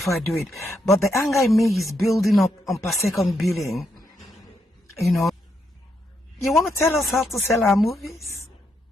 I do it? But the anger in me is building up on per second billing. You know, you want to tell us how to sell our movies?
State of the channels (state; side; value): normal; both; correlation 0.79